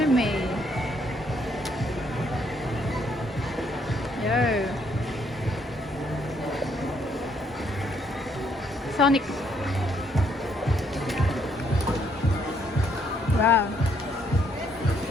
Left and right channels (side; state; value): both; normal; correlation 0.70